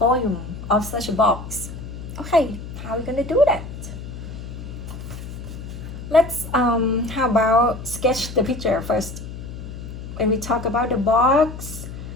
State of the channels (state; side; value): noise; left; hum, 10 dB below the sound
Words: of such a box. Okay, how are we gonna do that? Let's how about sketch the picture first. When we talk about the box,